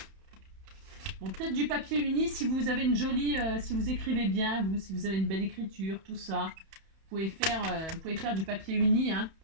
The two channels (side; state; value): left; late; 31 ms